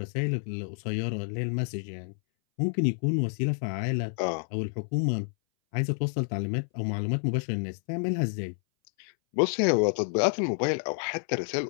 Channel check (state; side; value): silent; right; 59 dB below the other